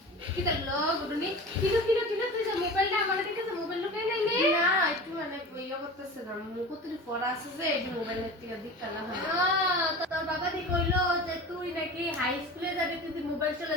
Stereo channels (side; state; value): both; normal; correlation 0.34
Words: কি করলো গুডুনি কিলো তুই যে মোবাইলটা আমার কাছে মোবাইল লুকাই নাই নে না একটু মানে ইয়া করতেছে না মুকুতরি পড়া আছে যে এই মোবাইলের থেকে দিকটা না হয় তো তোর বাবা দি কইলো যে তুই নাকি হাই স্কুলে যাবি তুই মোবাইল চলা